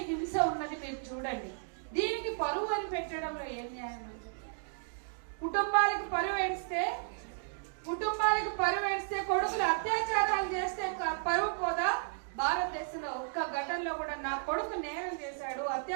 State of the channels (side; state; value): left; silent; digital silence